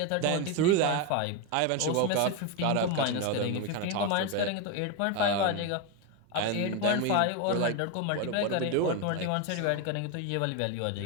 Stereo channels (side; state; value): both; different; correlation 0.02